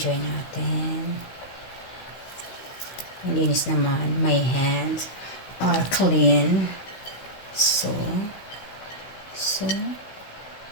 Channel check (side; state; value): right; late; 16 ms